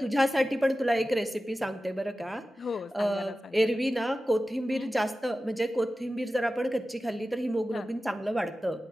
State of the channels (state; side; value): normal; both; correlation 0.94